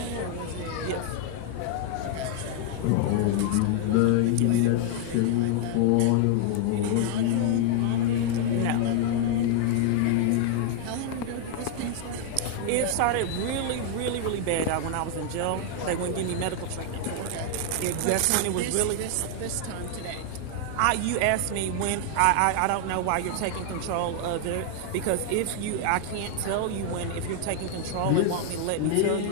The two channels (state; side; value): different; both; correlation 0.00